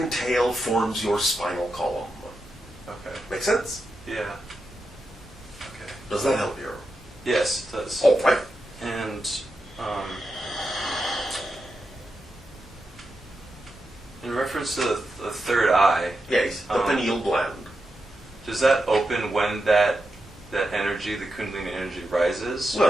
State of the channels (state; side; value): normal; both; correlation 0.88